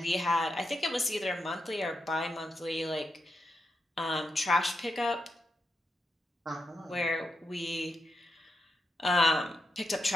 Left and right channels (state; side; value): normal; both; correlation 0.85